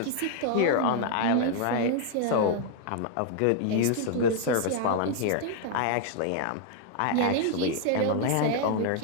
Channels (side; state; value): both; different; correlation -0.01